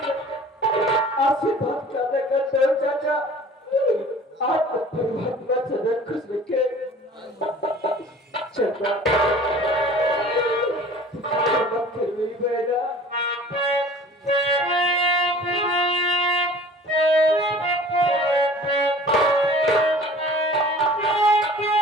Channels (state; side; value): normal; both; correlation 0.46